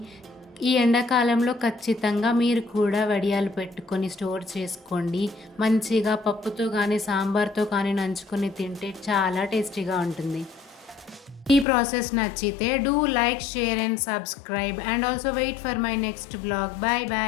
ఈ ఎండాకాలంలో ఖచ్చితంగా మీరు కూడా వడియాలు పెట్టుకొని స్టోర్ చేసుకోండి. మంచిగా పప్పుతో కానీ సాంబార్తో కానీ నంచుకొని తింటే చాలా టేస్టీగా ఉంటుంది. ఈ ప్రాసెస్ నచ్చితే do like, share and subscribe and also wait for my next blog. Bye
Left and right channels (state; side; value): drops out; right; at 11.7 s